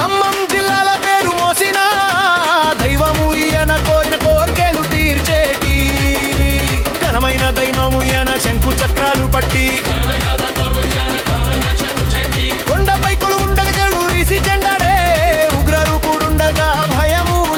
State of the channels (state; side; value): identical; both; correlation 1.00